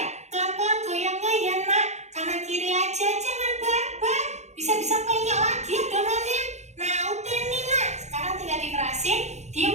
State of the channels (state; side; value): late; left; 0.33 ms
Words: Pelan-pelan goyangnya ya nak. Kanan kiri aja, jangan barbar. Bisa-bisa penyok lagi adonannya. Nah udah nih nak, sekarang tinggal dikerasin,